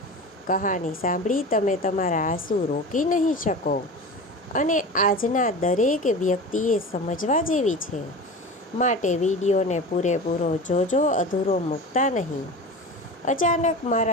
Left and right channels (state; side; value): normal; both; correlation 0.31